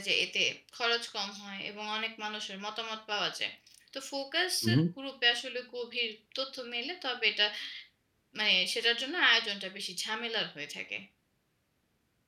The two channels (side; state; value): both; identical; correlation 1.00